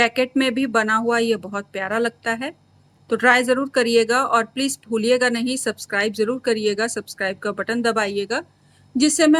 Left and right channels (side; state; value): both; identical; correlation 1.00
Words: में भी बना हुआ ये बहुत प्यारा लगता है। तो ट्राई ज़रूर करिएगा और प्लीज़ भूलिएगा नहीं, सब्सक्राइब ज़रूर करिएगा, सब्सक्राइब का बटन दबाइएगा, जिससे